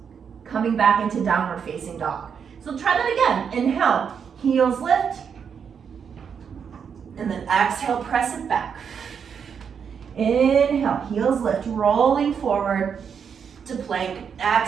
coming back into downward facing dog. So try that again. Inhale, heels lift, and then exhale, press it back. Inhale, heels lift, rolling forward to plank.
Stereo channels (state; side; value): quieter; left; 7.0 dB